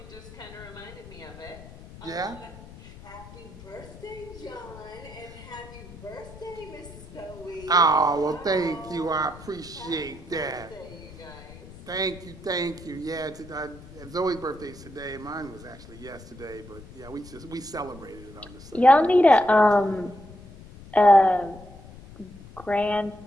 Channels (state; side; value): noise; left; rumble, 17 dB below the sound